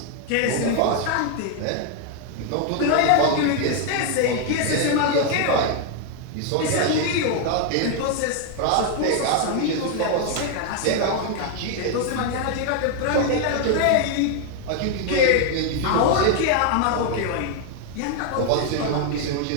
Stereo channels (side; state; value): both; different; correlation 0.01